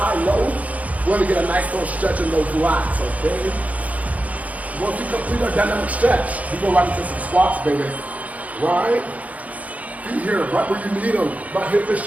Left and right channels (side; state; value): left; late; 0.071 ms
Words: we want to get a nice little stretch in those lats, okay? Once you complete our dynamic stretch, we go right into some squats, baby. Right? Feet here, right where you need them. About hip to